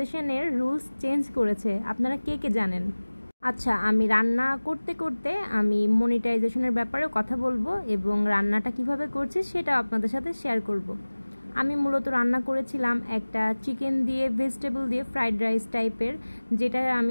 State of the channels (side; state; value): both; inverted; correlation -1.00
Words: রুলস চেঞ্জ করেছে। আপনারা কে কে জানেন? আচ্ছা, আমি রান্না করতে করতে আমি মনিটাইজেশনের ব্যাপারেও কথা বলবো এবং রান্নাটা কিভাবে করছি সেটাও আপনাদের সাথে শেয়ার করব। আমি মূলত রান্না করেছিলাম একটা চিকেন দিয়ে ভেজিটেবল দিয়ে ফ্রাইড রাইস টাইপের, যেটা